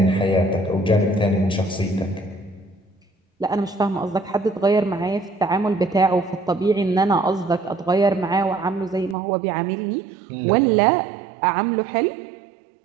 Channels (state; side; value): drops out; left; at 9.2 s